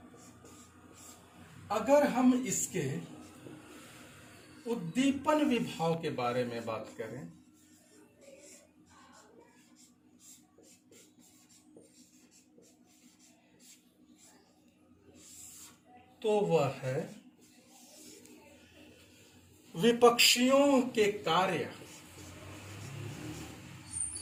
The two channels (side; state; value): both; identical; correlation 1.00